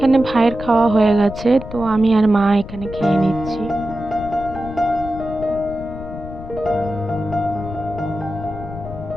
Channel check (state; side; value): noise; left; rumble, 12 dB below the sound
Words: ভাইয়ের খাওয়া হয়ে গেছে, তো আমি আর মা এখানে খেয়ে নিচ্ছি।